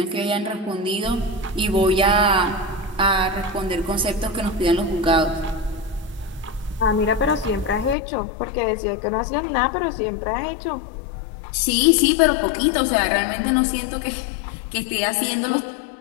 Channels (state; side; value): drops out; right; at 8.0 s